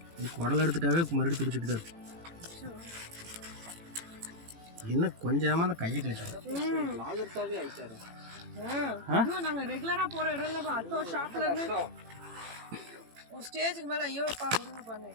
குடல் எடுத்துட்டாவே மறுபடியும் பிடிச்சிட்டு தான் இருக்கும் என்ன கொஞ்சமா அந்த கையை கிழிச்சு லாகர்ஸாவே ஆயிட்டாரு நாங்க ரெகுலரா போற இடம்ல அத்தோ ஷாப்ல இருந்து ஒரு ஸ்டேஜுக்கு மேல ஐயோ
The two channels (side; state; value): left; late; 18 ms